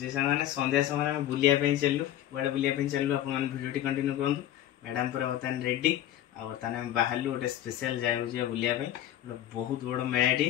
सांगने संध्या समय में बुलिया पे चललु बड़े बुलिया पे चललु आपन वीडियो टी कंटिन्यू करंतु मैडम पूरा बतन रेडी आ बतन हम बाहरलु गोटे स्पेशल जाय हो बुलिया पे बहुत बड़ मेलाटी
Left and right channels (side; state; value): right; quieter; 12.4 dB